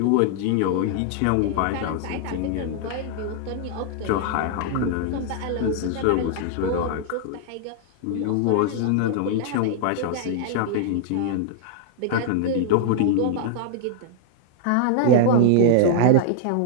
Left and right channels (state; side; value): different; both; correlation -0.01